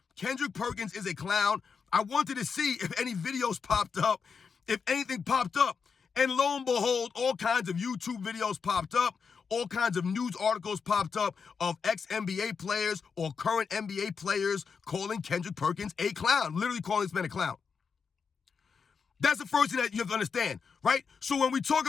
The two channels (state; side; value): quieter; right; 5.8 dB